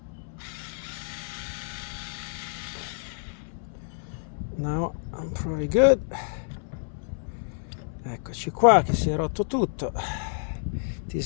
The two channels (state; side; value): silent; right; 59 dB below the other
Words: now I'm pretty good. Eccoci qua, che si è rotto tutto. This